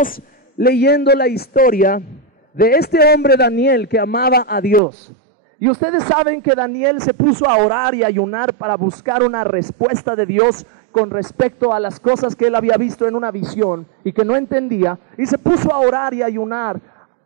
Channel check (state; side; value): drops out; left; at 4.8 s